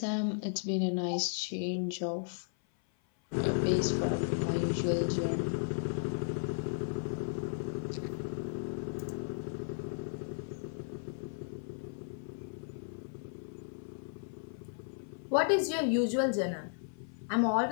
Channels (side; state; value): right; silent; 55 dB below the other